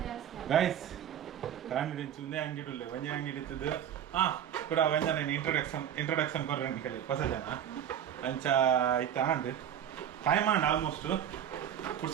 ಗೈಸ್ ಕಾಮಿಡಿ ಚುಂದೆ ಅಂಗಡಿ ವಂಜೆ ಅಂಗಡಿ ಇತ್ತದು ಕೂಡ ವಂಜನ ಇಂಟ್ರೊಡಕ್ಷನ್ ಕೊರ್ರಂಡಿ ಕಲಿ ಹೊಸ ಜನ ಅಂಚ ಇತ್ತ ಅಂಡ್ ಟೈಮ್ ಅಂಡ್ ಆಲ್ಮೋಸ್ಟ್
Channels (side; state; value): left; quieter; 9.8 dB